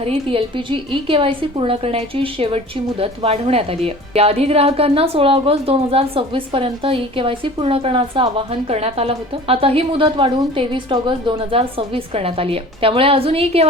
एलपीजी ई-केवायसी पूर्ण करण्याची शेवटची मुदत वाढवण्यात आली आहे। याआधी ग्राहकांना 16 ऑगस्ट 2026 पर्यंत ई-केवायसी पूर्ण करण्याचं आवाहन करण्यात आलं होतं। आता ही मुदत वाढवून 23 ऑगस्ट 2026 करण्यात आली आहे। त्यामुळे अजून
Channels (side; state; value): both; normal; correlation 0.43